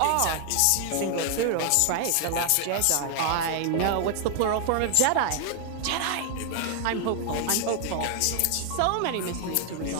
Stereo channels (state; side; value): different; both; correlation 0.00